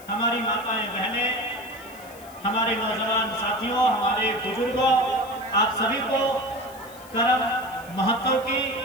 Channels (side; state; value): left; noise; hiss, 21 dB below the sound